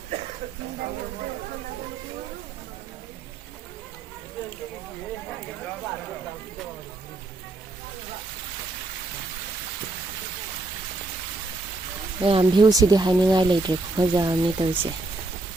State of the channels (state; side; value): quieter; left; 3.1 dB